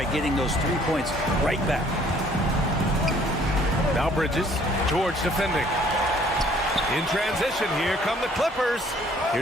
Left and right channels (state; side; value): normal; both; correlation 0.59